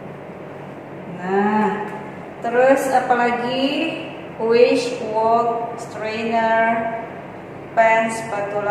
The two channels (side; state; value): both; identical; correlation 1.00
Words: Nah, terus apalagi wish, wok, strainer, pan,